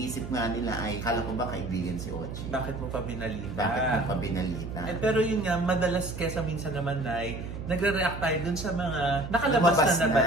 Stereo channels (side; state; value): right; noise; hum, 8 dB below the sound